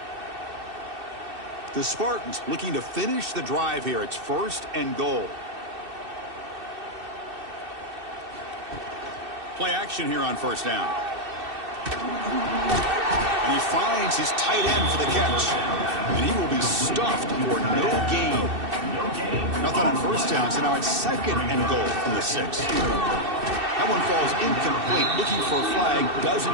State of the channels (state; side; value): late; left; 2.6 ms